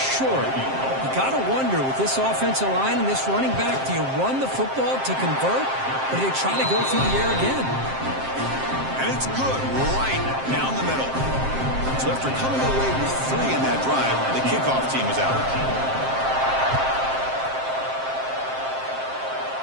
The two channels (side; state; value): left; late; 7.6 ms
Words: You got to wonder, with this offensive line and this running back, do you run the football to convert, or do they try to go through the air again? And it's good right down the middle. So after coming away with 3 in that drive, the kickoff team is out.